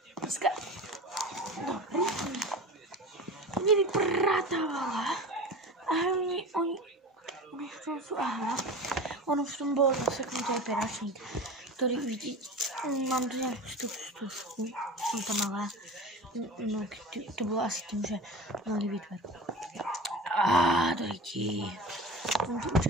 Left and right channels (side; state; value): both; normal; correlation 0.33